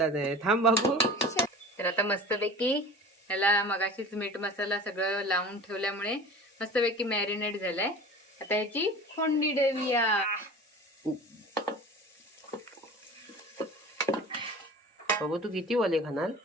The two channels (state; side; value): normal; both; correlation 0.38